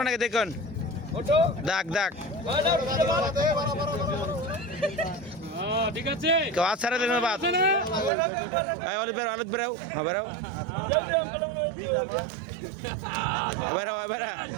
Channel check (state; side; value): drops out; left; at 8.1 s